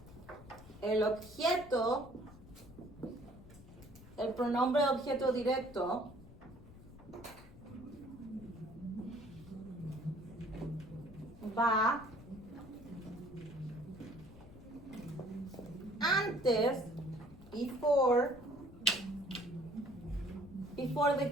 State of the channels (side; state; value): left; noise; rumble, 18 dB below the sound